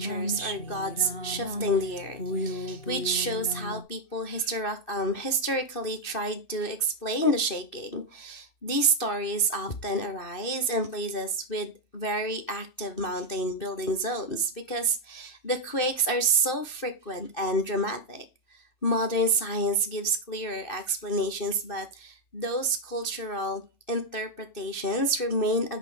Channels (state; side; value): late; right; 2.6 ms